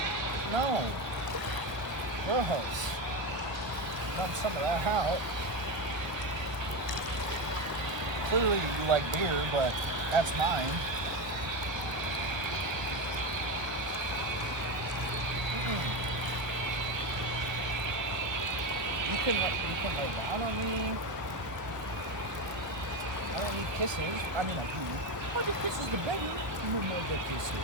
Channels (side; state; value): left; late; 1.5 ms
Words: No. Gross. Dump some of that out. Clearly you like beer, but that's mine. You can lay down on me. I don't need kisses. I mean, I do. Oh, the kisses the better. No more the